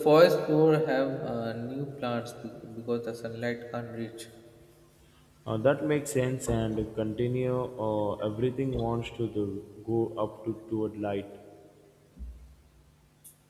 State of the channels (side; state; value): both; identical; correlation 1.00